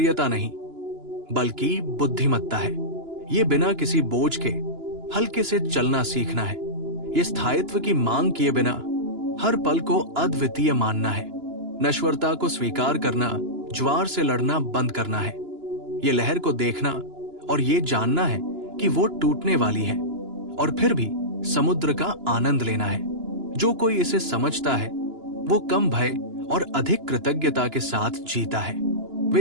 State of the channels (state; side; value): late; left; 2.9 ms